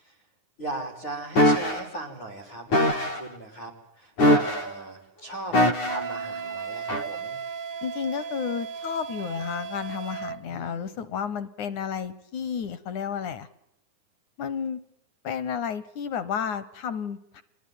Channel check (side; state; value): right; late; 9.6 ms